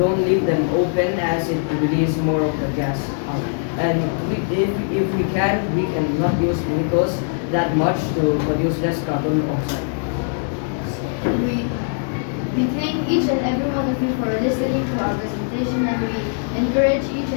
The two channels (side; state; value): right; silent; digital silence